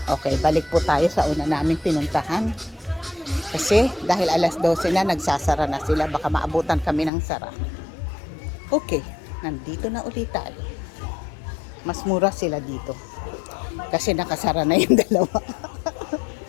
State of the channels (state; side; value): drops out; right; at 7.1 s